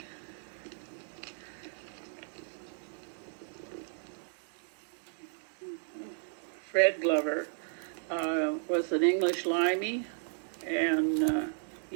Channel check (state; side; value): silent; left; digital silence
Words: Fred Glover was an English limey, and